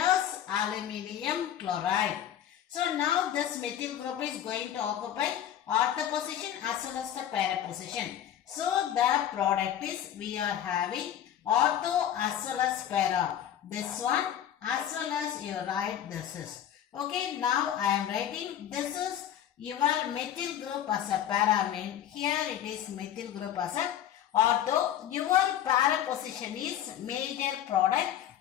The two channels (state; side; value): quieter; right; 10.6 dB